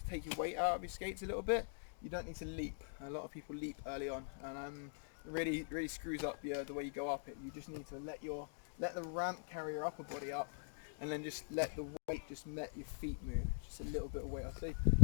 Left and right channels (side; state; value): right; silent; digital silence